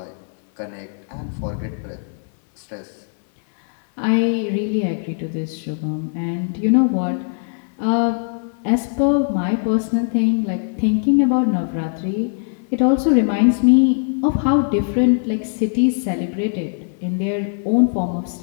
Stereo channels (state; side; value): silent; right; 61 dB below the other